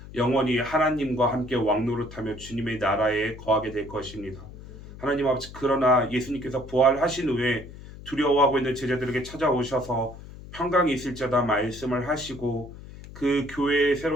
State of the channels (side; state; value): left; noise; hum, 15 dB below the sound